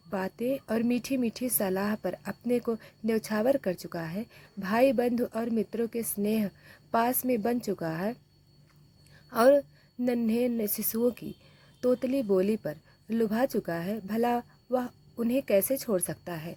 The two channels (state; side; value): identical; both; correlation 1.00